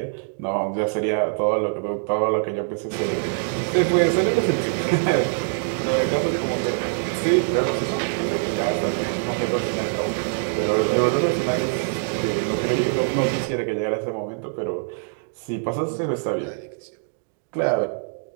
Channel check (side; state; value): left; silent; digital silence